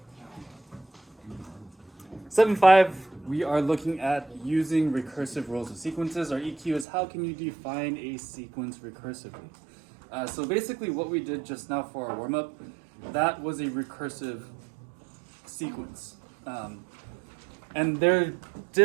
7.5, we are looking at using recursive rules of sequences. Our EQ is how can you define a sequence recursively? So basically what we did just now for our warm-up, that was a recursive sequence. And they're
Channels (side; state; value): left; drops out; at 6.9 s